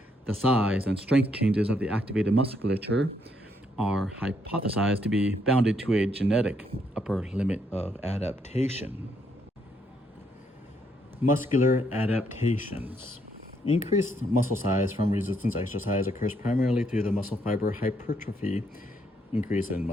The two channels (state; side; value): normal; both; correlation 0.74